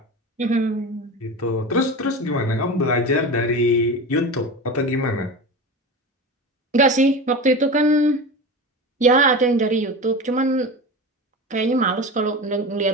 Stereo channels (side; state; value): both; normal; correlation 0.27